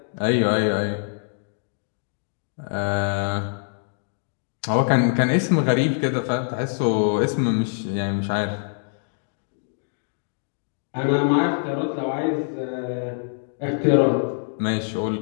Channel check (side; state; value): right; silent; digital silence